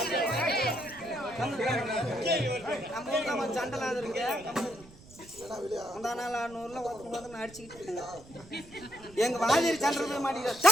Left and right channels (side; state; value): right; noise; rumble, 21 dB below the sound